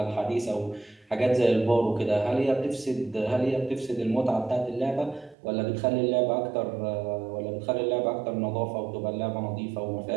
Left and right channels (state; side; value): drops out; left; at 5.4 s